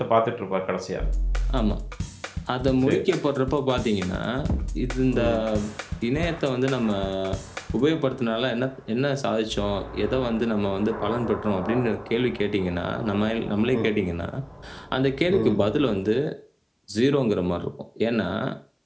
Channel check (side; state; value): both; identical; correlation 1.00